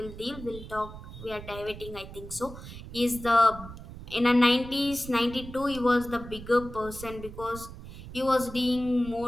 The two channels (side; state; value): right; noise; rumble, 13 dB below the sound